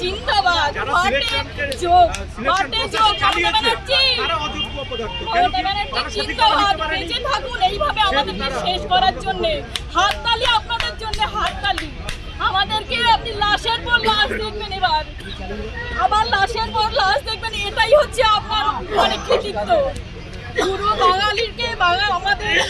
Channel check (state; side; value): identical; both; correlation 1.00